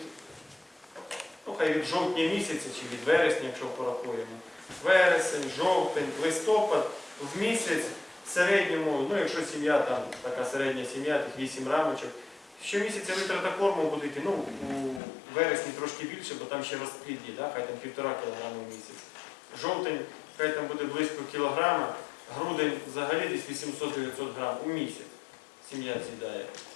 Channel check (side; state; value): right; drops out; at 15.0 s